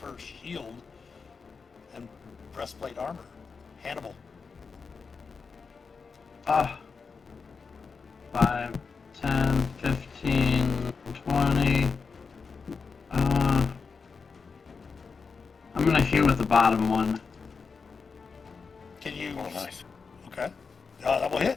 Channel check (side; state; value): right; quieter; 5.1 dB